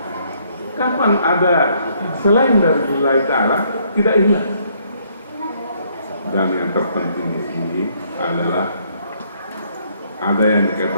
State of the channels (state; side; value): inverted; both; correlation -0.68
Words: Kapan ada selain dari lillahi ta'ala tidak ikhlas? Dan yang terpenting di sini adalah ada yang